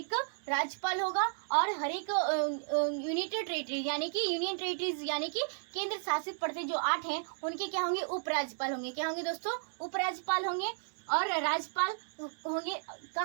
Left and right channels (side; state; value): left; silent; digital silence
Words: राज्यपाल होगा। और हर एक यूनिटेड टेरिटरी यानी कि यूनियन टेरिटरीज यानी कि केंद्र शासित प्रदेश जो 8 हैं उनके क्या होंगे? उपराज्यपाल होंगे। क्या होंगे दोस्तों? उपराज्यपाल होंगे। और राज्यपाल होंगे